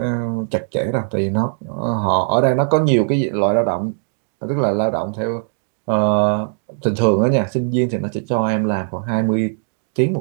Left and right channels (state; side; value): silent; left; 66 dB below the other